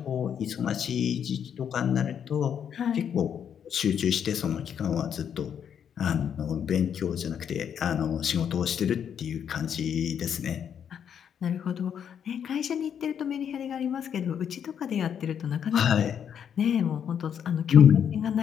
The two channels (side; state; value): right; quieter; 8.3 dB